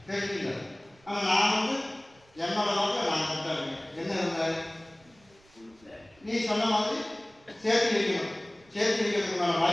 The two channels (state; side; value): noise; right; rumble, 30 dB below the sound